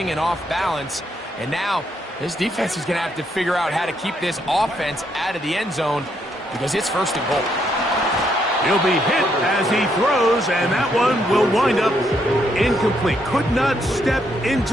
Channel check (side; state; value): both; normal; correlation 0.75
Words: and off balance. And now this defense is going to have to figure out how to keep this offense out of the end zone because it's 1st and goal. He'll be hit as he throws, and that one will wind up incomplete. Could not step